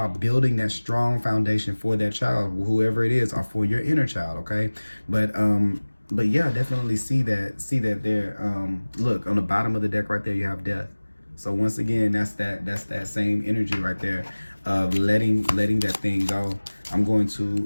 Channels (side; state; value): both; inverted; correlation -1.00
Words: building that strong foundation for that child, whoever it is, or for your inner child. Okay, but yeah, definitely see that there. Look on the bottom of the deck right there, you have death. So once again, that's that same energy right there of letting that thing go. I'm going